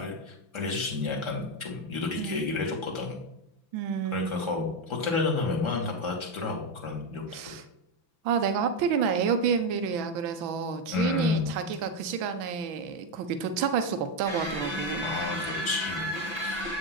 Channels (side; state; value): left; late; 6.0 ms